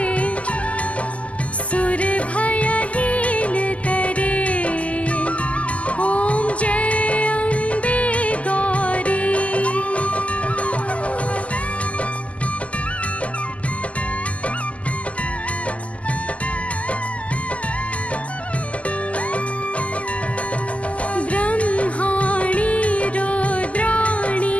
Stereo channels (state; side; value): late; right; 0.067 ms